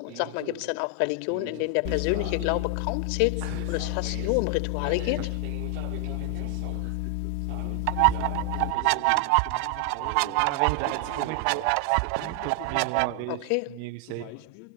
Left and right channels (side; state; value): both; different; correlation 0.00